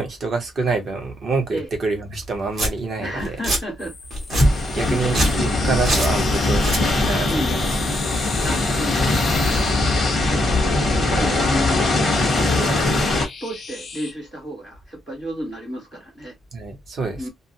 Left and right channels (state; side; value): normal; both; correlation 0.77